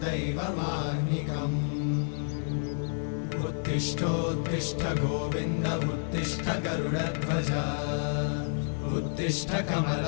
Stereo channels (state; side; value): silent; right; digital silence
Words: दैवमाह्निकम् उत्तिष्ठोत्तिष्ठ गोविन्द उत्तिष्ठ गरुडध्वज उत्तिष्ठ